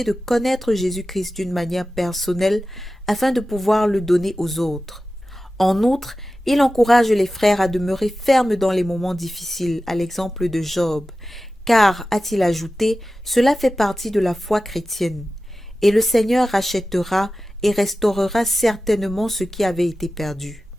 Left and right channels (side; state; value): both; normal; correlation 0.94